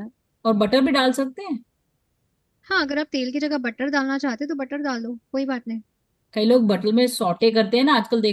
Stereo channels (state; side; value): identical; both; correlation 1.00